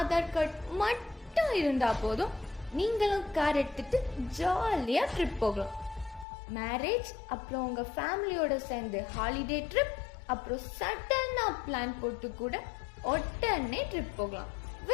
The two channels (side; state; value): right; drops out; at 6.2 s